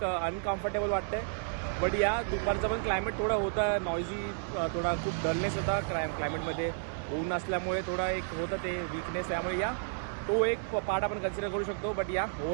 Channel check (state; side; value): silent; left; digital silence